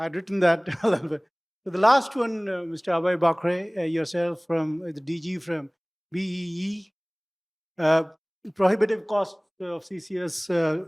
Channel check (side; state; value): both; identical; correlation 1.00